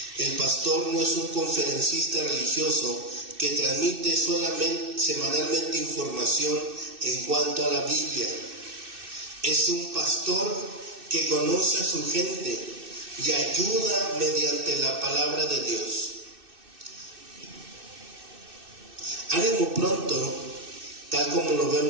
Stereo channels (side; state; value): left; late; 2.6 ms